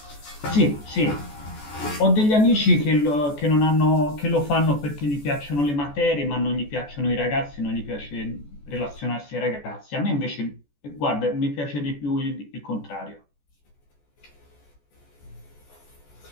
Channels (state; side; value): late; right; 14 ms